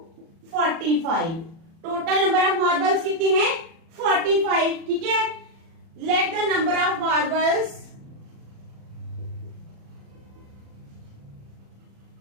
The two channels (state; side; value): late; left; 36 ms